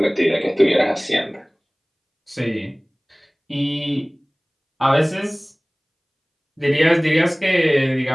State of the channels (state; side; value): identical; both; correlation 1.00